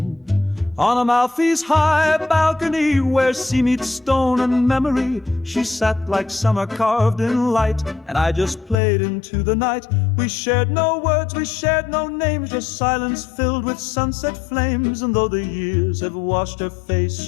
On Amalfi's high balcony, where sea meets stone and memory, she sat like summer carved in light, and I just played into the night. We shared no words, we shared no names, just silence filled with sunset flames. And though the years have washed her face,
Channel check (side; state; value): right; drops out; at 8.8 s